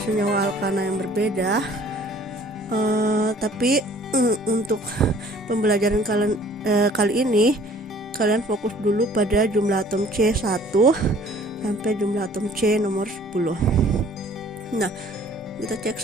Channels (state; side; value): normal; both; correlation 0.54